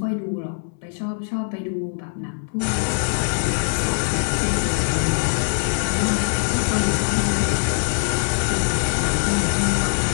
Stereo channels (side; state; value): right; silent; 64 dB below the other